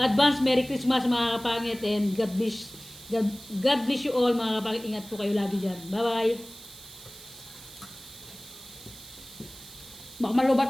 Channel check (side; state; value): right; noise; hiss, 17 dB below the sound